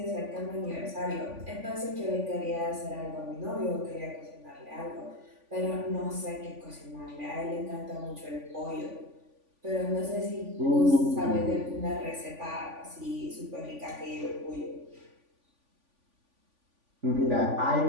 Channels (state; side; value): late; left; 3.5 ms